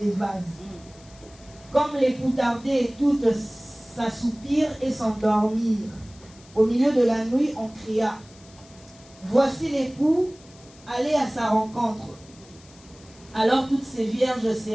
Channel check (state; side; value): noise; left; hiss, 24 dB below the sound